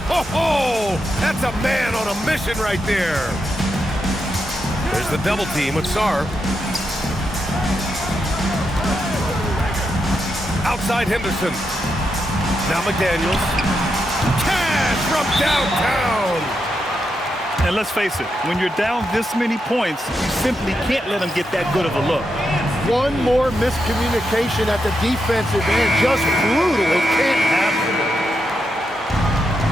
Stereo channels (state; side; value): normal; both; correlation 0.84